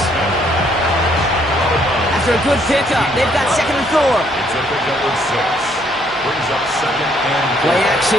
After a good pickup, they've got second and 4. It's a pickup of 6. Brings up second and 4. Play action,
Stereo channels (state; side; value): noise; left; hum, 26 dB below the sound